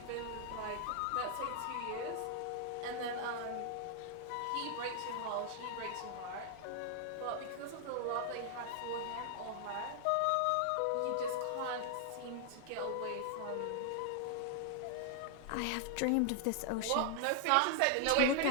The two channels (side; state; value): both; different; correlation 0.00